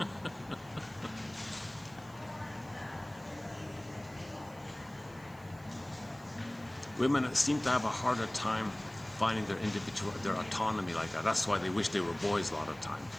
Women seem to have a harder time finding their autonomy like that. That's why they wish they were boys a lot of time.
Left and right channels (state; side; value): noise; right; hiss, 25 dB below the sound